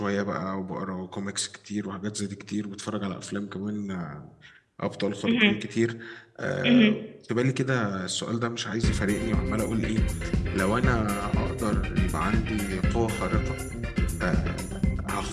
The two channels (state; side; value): identical; both; correlation 1.00